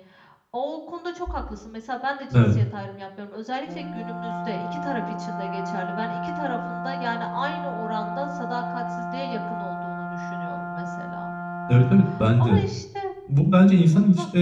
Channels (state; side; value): identical; both; correlation 1.00